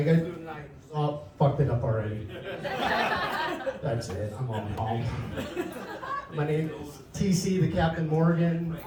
guys doing tonight? Oh, fucked it up already. That's it. I'm on home. My name is TC, the Captain Morgan.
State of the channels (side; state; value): both; identical; correlation 1.00